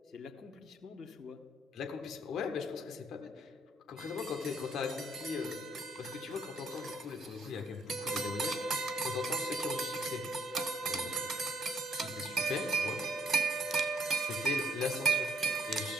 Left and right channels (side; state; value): both; normal; correlation 0.69